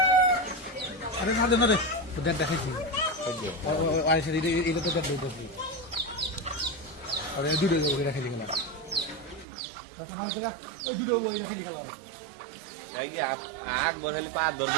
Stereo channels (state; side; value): drops out; left; at 9.5 s